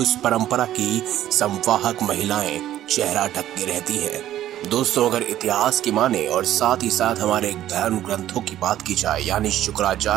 परंपरा की संवाहक महिलाएं चेहरा ढक के रहती हैं। दोस्तों, अगर इतिहास की माने और साथ ही साथ हमारे धर्म ग्रंथों की बात की जाए, यानी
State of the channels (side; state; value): left; quieter; 12.6 dB